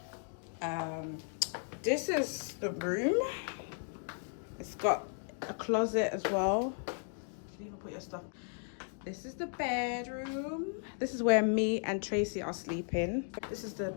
This is the room. It's got a closet as well. You can even put your stuff. This is the bedroom. This is where me and Tracy are sleeping. This is the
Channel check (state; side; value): silent; right; 54 dB below the other